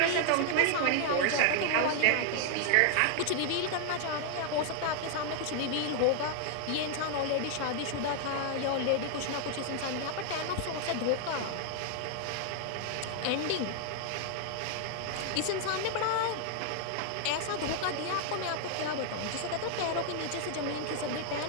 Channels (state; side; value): different; both; correlation 0.00